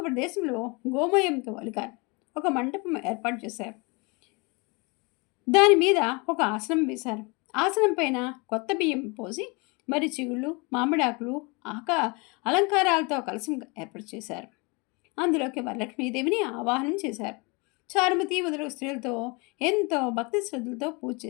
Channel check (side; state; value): right; quieter; 29.0 dB